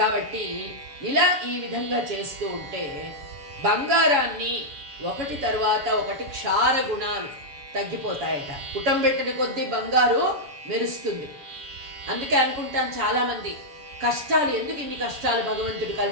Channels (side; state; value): left; late; 7.1 ms